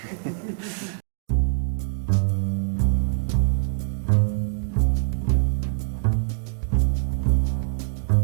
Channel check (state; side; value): silent; left; digital silence